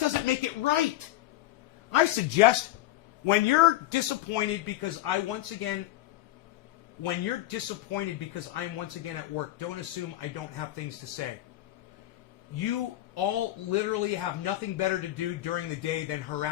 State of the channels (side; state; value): right; quieter; 15.6 dB